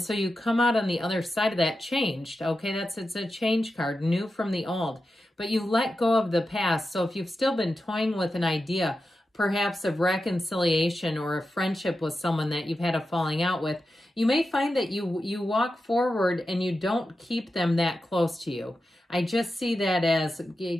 you come out on the other side of that changed. Okay, it's a change card, new from the old. But you let go of the past. So if you've still been toying with an idea, perhaps of reconciliation or a friendship with someone that you've had a falling out with, you may find that you walk forward and you don't keep them that close to you. I just see that as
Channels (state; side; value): normal; both; correlation 0.90